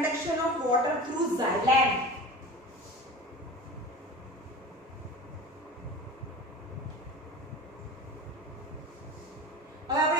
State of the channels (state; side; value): normal; both; correlation 0.34